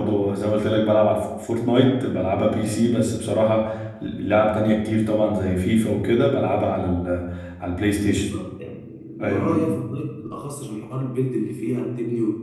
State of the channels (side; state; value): both; identical; correlation 1.00